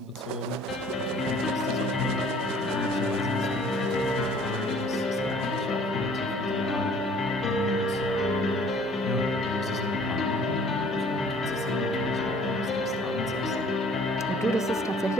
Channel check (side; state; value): both; normal; correlation 0.54